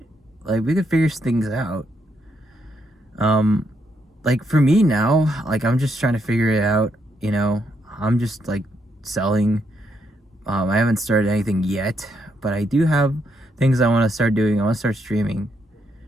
Like, we could figure things out. Like, for me now, like, I'm just trying to figure it out, you know. I'm just, like, selling. I haven't started anything yet, but I do have things I want to start doing. I want to start streaming,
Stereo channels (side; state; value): both; normal; correlation 0.77